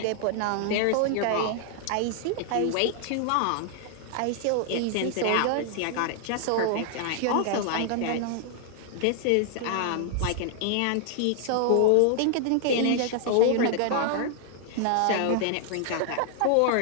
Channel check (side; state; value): both; different; correlation 0.00